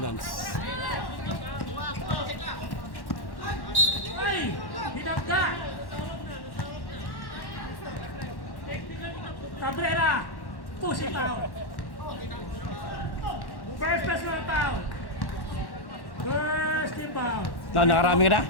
Ay! Hinagda! Cabrera! Pushing foul! First personal foul! First team foul! Nakarami ka na?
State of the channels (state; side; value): late; right; 1.1 ms